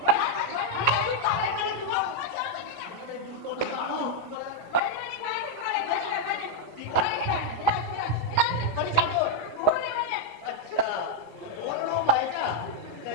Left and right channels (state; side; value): late; left; 17 ms